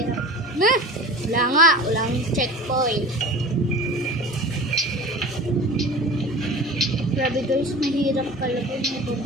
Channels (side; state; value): both; normal; correlation 0.37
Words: Wala nga. Walang checkpoint. Grabe guys, mahirap talaga yung